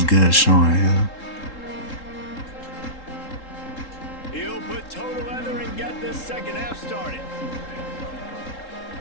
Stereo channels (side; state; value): right; late; 3.8 ms